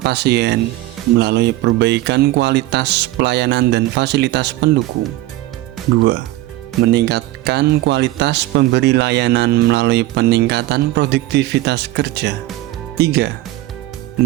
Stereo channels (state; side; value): quieter; left; 16.7 dB